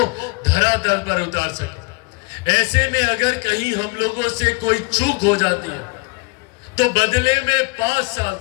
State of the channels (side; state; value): right; quieter; 28.7 dB